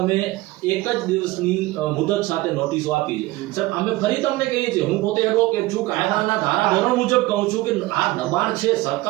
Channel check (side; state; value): left; quieter; 18.9 dB